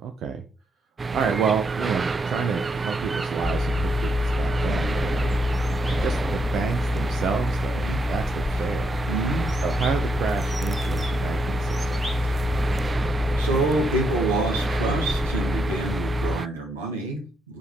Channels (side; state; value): both; normal; correlation 0.77